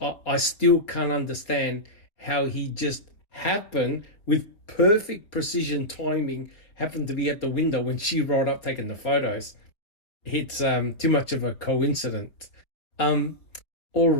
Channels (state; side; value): late; right; 4.5 ms